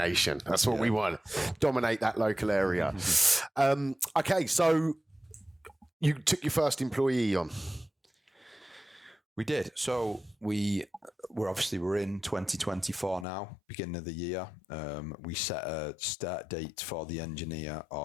That's what we want. Dominate that local area. Okay, so you took your first employee on. We did. So we're in 2024 now, beginning of the year. We set a start date for the engineer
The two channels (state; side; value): drops out; right; at 13.2 s